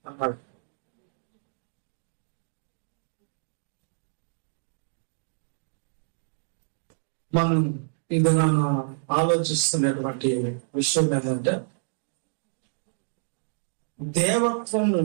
అన్నాడు. మనం ఇది ఆలోచిస్తున్నటువంటి విషయం ఏంటంటే, దేవత్వము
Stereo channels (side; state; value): left; silent; digital silence